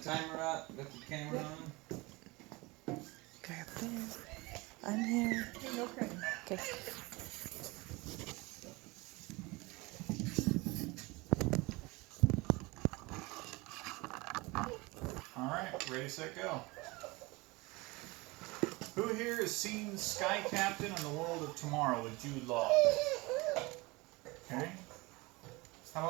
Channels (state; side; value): quieter; left; 23.9 dB